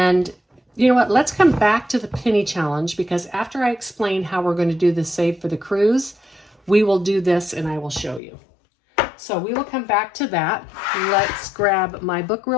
you know what? Let's come back to the penny challenge because after I explain how we're going to do the Save for the Cruise, we will do this and I will show you. So we will come back to that. Let's grab my book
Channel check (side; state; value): right; drops out; at 8.2 s